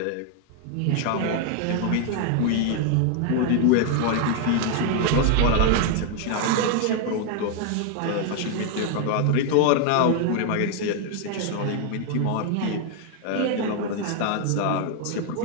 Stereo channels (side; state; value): both; different; correlation 0.00